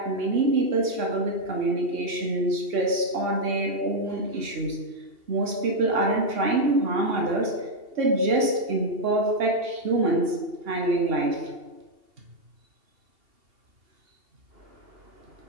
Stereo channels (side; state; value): left; late; 2.8 ms